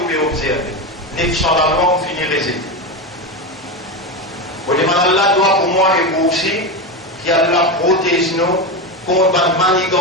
pouvez observer. 900 la loi, vous finirez résultat. Vous demandez Allah doit pour moi et vous aussi, qu'Allah protège nous contre la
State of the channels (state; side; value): normal; both; correlation 0.16